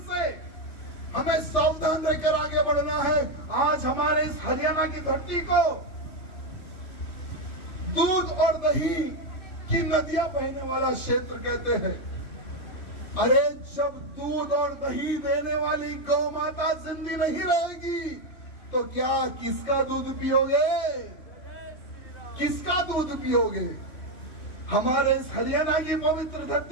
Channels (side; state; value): right; late; 3.1 ms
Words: से हमें सावधान रहकर आगे बढ़ना है। आज हमारे इस हरियाणा की धरती को दूध और दही की नदियां बहने वाला क्षेत्र कहते हैं। अरे जब दूध और दही देने वाली गौ माता जिंदी नहीं रहेगी, तो क्या किसका दूध पियोगे? किसका दूध पियोगे? हमारे इस हरियाणा की पवित्र